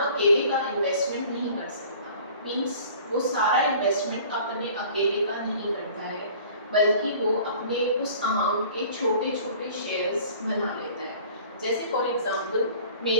का इन्वेस्टमेंट नहीं कर सकता। मीन्स वो सारा इन्वेस्टमेंट अपने अकेले का नहीं करता है, बल्कि वो अपने उस अमाउंट के छोटे छोटे शेयर्स बना लेता है। जैसे फॉर एग्जांपल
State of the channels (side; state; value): both; inverted; correlation -0.48